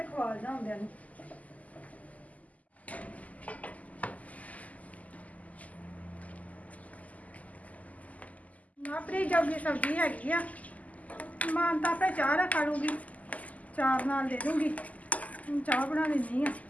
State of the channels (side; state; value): right; late; 0.074 ms